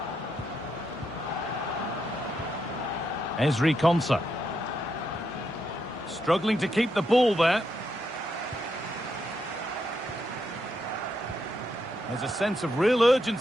Ezri Konsa. Struggling to keep the ball there. There's a sense of real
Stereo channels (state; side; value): normal; both; correlation 0.81